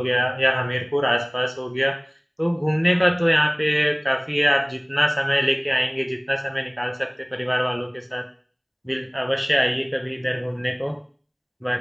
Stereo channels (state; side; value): identical; both; correlation 1.00